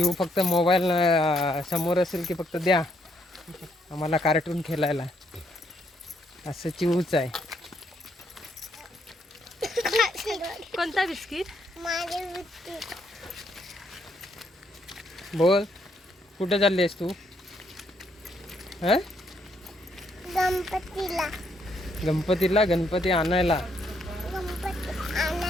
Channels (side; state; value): both; normal; correlation 0.73